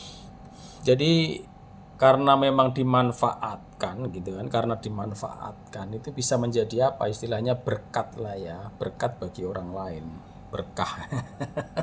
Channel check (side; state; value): both; identical; correlation 1.00